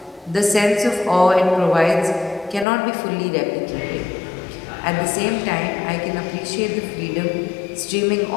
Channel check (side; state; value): right; drops out; at 2.7 s